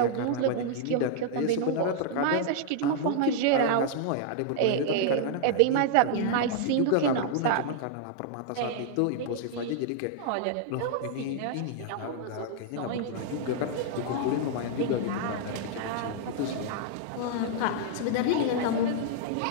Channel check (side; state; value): both; different; correlation -0.01